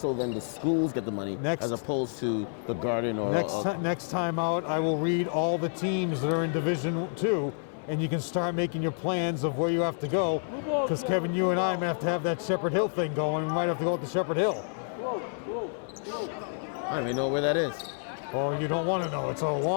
then the schools get the money as opposed to the Garden or... Next time out, I will read all the teams that are in Division 2, and you can start making your plans of where you have to go, because Kevin, you and I might have to have that Shepherd Hill thing going. We might have to go to Shepherd Hill. I don't even know where that is. Oh, you don't want to know. It's a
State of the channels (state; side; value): silent; right; 59 dB below the other